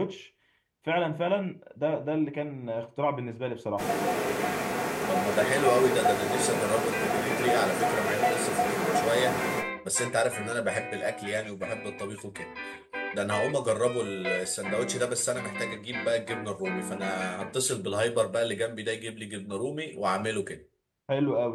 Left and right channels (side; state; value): both; identical; correlation 1.00